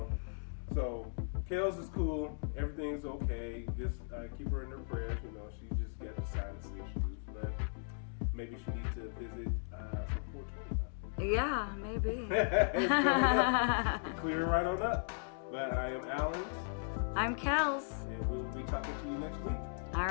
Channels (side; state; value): right; silent; digital silence